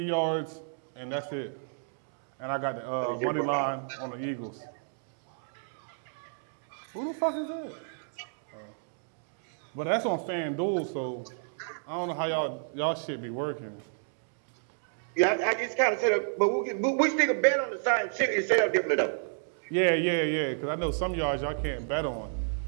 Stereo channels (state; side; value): silent; left; digital silence